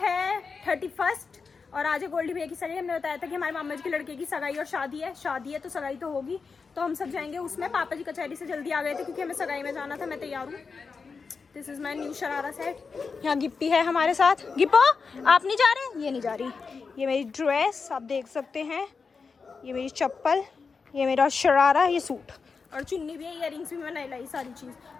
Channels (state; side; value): quieter; right; 5.0 dB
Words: 31 और आज है गोल्डी भैया की सगाई। हमने बताया था कि हमारे मामा जी के लड़के की सगाई और शादी है तो सगाई तो होगी, तो हम सब जाएंगे उसमें। पापा जी कचहरी से जल्दी आ गए थे क्योंकि हमें सगाई में जाना था। मैं तैयार हूँ। This is my new sharara set. यहाँ गिप्पी है हमारे साथ। गिप्पो, आप नहीं जा रहे? ये नहीं जा रही। ये मेरी ड्रेस आप देख सकते हैं, ये मेरी चप्पल, ये मेरा शरारा, ये सूट और चुन्नी भी है, इयररिंग्स भी मैंने लाई, सारी चीज़।